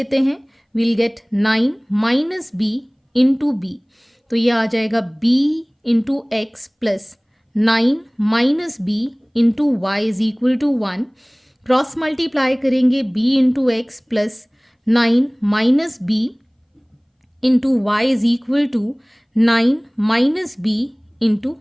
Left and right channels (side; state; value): both; identical; correlation 1.00